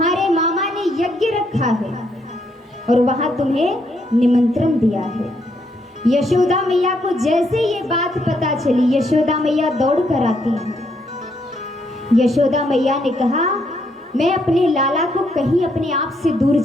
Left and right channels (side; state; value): both; normal; correlation 0.74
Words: मामा ने यज्ञ रखा है और वहां तुम्हें निमंत्रण दिया है। यशोदा मैया को जैसे ये बात पता चली, यशोदा मैया दौड़ कर आती है। यशोदा मैया ने कहा, मैं अपने लाला को कहीं अपने आप से दूर